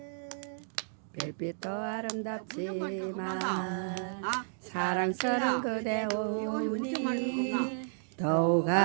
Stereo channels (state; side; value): silent; left; digital silence